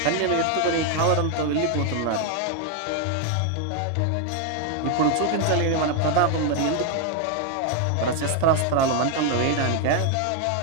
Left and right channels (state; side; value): different; both; correlation 0.01